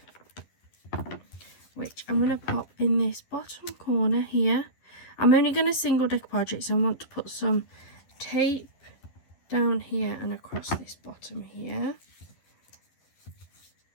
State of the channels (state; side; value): late; right; 11 ms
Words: which I'm going to pop in this bottom corner here. I'm only going to single decoupage it, so I want to put some tape down here and across this bottom here.